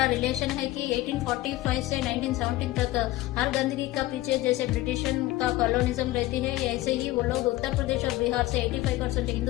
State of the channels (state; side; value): quieter; right; 17.2 dB